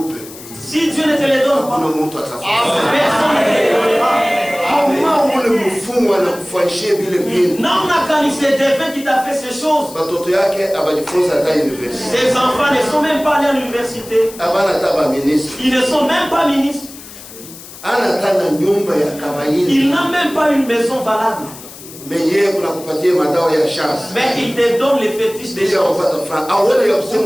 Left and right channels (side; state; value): left; noise; hiss, 16 dB below the sound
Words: Si Dieu ne te les donne pas, personne ne te les donnera. C'est Dieu qui t'a fait ces choses. Ses enfants ne sont même pas allés à l'université. Ils ne sont même pas ministres. Il n'a même pas une maison valable. Mais il te donne les fétiches des gens.